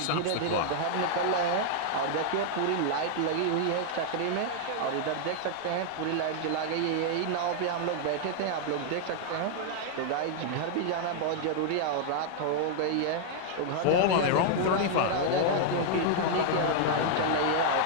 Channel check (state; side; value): different; both; correlation 0.00